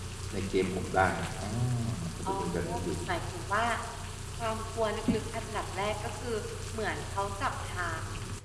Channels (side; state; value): both; identical; correlation 1.00